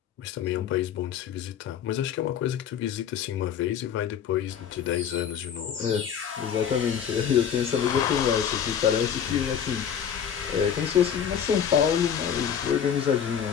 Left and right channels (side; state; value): right; quieter; 8.4 dB